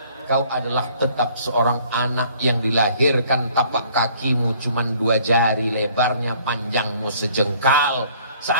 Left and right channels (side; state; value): both; inverted; correlation -0.57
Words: kau adalah tetap seorang anak yang dilahirkan tapak kakimu cuman 2 jari, lebarnya panjangmu sejengkal.